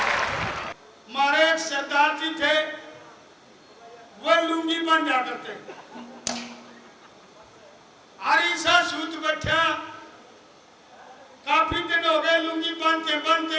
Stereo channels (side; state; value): both; identical; correlation 1.00